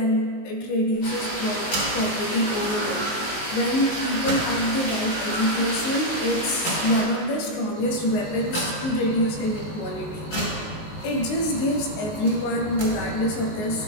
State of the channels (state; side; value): late; right; 19 ms